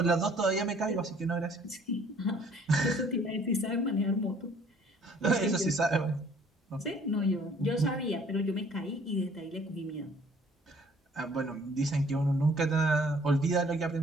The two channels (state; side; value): normal; both; correlation 0.58